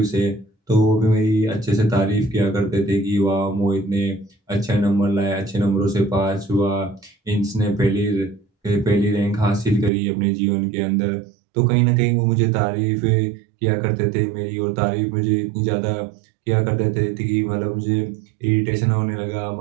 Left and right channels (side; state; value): left; drops out; at 9.9 s